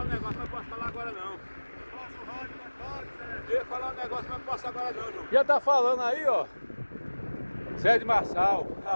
um negócio, mas não posso falar agora não. Eu ia falar um negócio, mas não posso agora não, João. Já tá falando aí, ó. Zé de Marçal,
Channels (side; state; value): both; inverted; correlation -1.00